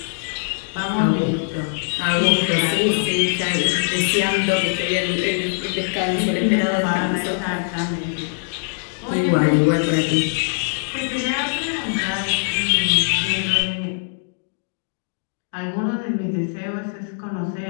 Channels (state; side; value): silent; right; digital silence